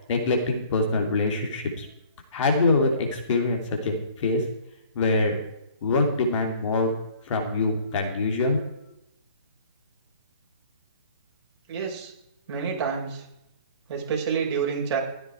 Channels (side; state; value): both; inverted; correlation -0.52